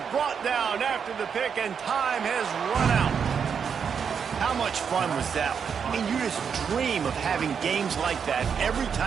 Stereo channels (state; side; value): quieter; left; 6.9 dB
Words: Brought down after the pick, and time has run out. How much fun was that one? I mean, you just dream of having games like that every